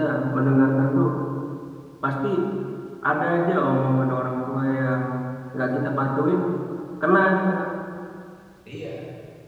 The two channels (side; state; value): both; identical; correlation 1.00